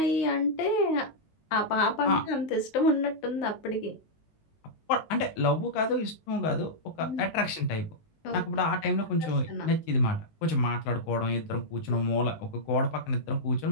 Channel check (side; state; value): right; late; 19 ms